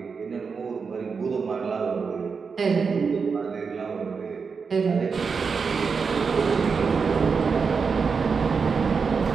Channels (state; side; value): quieter; left; 5.4 dB